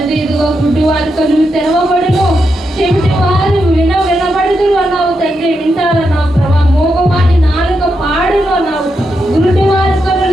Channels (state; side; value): normal; both; correlation 0.84